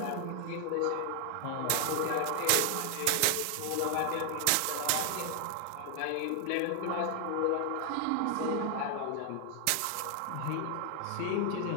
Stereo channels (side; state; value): both; different; correlation 0.00